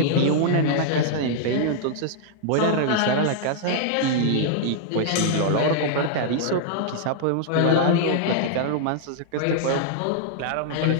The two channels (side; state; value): both; different; correlation -0.01